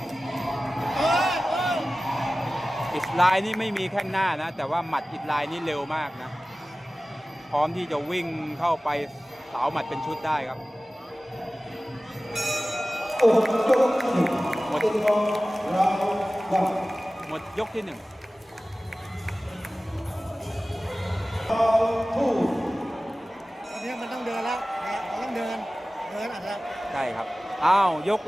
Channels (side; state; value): both; normal; correlation 0.97